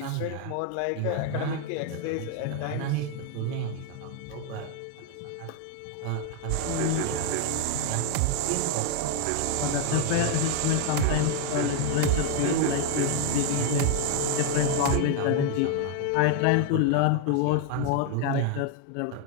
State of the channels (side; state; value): both; different; correlation 0.01